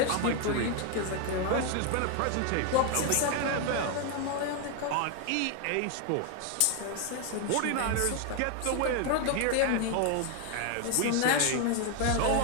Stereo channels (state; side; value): different; both; correlation 0.01